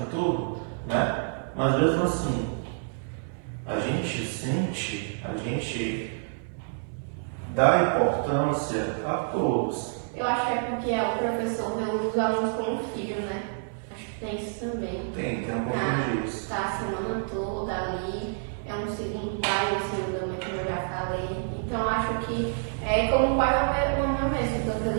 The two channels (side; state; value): left; silent; 59 dB below the other